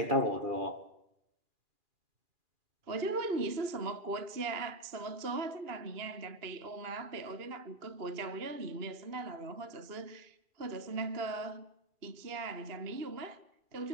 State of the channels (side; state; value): left; late; 2.8 ms